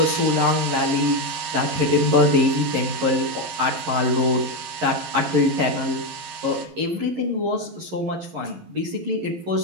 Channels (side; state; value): left; late; 11 ms